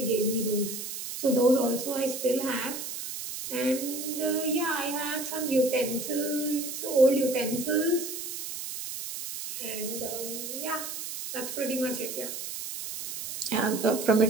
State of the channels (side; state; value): right; noise; hiss, 7 dB below the sound